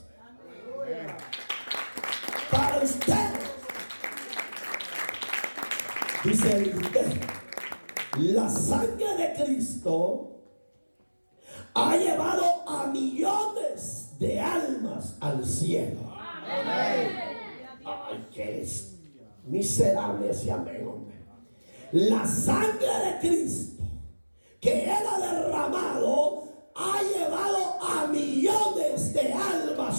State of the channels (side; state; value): both; inverted; correlation -1.00